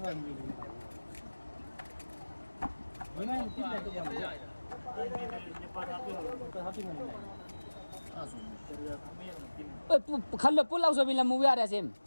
खल्लो पुल आउँछ बिना मुभी आएर सेम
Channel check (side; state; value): both; inverted; correlation -1.00